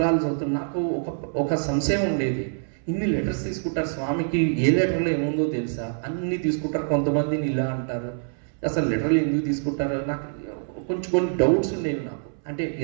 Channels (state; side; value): silent; left; 62 dB below the other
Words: చదువుతున్నా నాకు ఒక సంశయం ఉండేది. ఇన్ని లెటర్స్ తీసుకుంటారు స్వామికి, ఏ లెటర్లో ఏముందో తెలుసా, అన్ని తీసుకుంటారు, కొంతమందిని ఇలా అంటారు, అసలు లెటర్లు ఎందుకు తీసుకుంటారు, నాకు కొన్ని డౌట్స్ ఉండేవి నాకు. అంటే